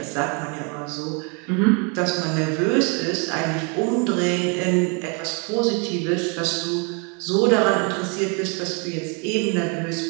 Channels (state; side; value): quieter; left; 34.9 dB